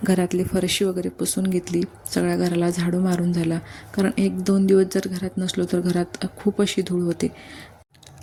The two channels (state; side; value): identical; both; correlation 1.00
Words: घरातली फरशी वगैरे पुसून घेतली, सगळ्या घराला झाडू मारून झाला, कारण 1-2 दिवस जर घरात नसलो तर घरात खूप अशी धूळ होते.